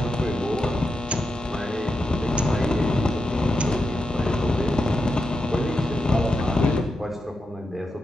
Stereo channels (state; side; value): normal; both; correlation 0.87